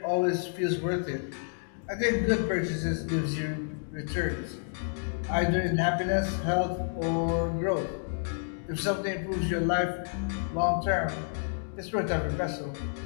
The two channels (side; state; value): right; silent; digital silence